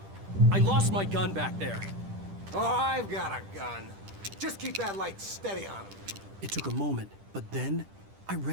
I lost my gun back there. Oh, I've got a gun. Just keep that light steady on him. It took a moment, but then I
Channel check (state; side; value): late; left; 10 ms